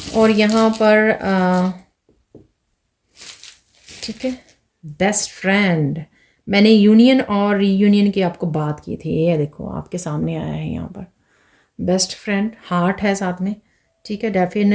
और यहाँ पर ठीक है, बेस्ट फ्रेंड। मैंने यूनियन और रीयूनियन की आपको बात की थी, ये देखो आपके सामने आया है यहाँ पर बेस्ट फ्रेंड, हार्ट है साथ में। ठीक है,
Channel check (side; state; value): both; identical; correlation 1.00